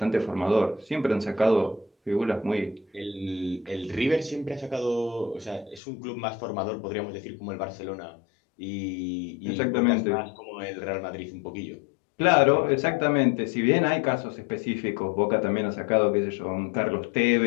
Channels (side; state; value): right; drops out; at 5.8 s